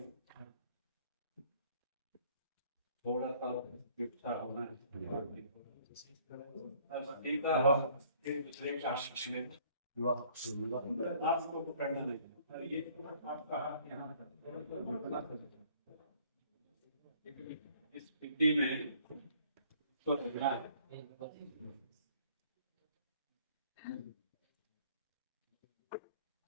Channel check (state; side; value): inverted; both; correlation -0.59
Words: थोड़ा सा इच्छा होना है। एक दूसरे का आपको पकड़ना नहीं, ये आपका हाथ यहाँ इस स्थिति में तो लगना है।